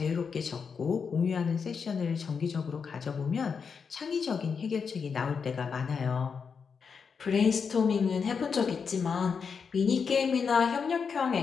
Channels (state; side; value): quieter; right; 5.9 dB